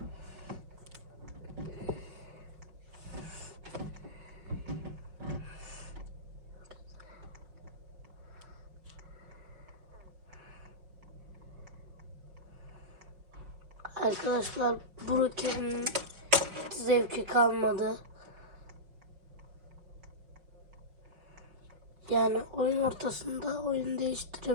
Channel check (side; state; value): left; late; 5.5 ms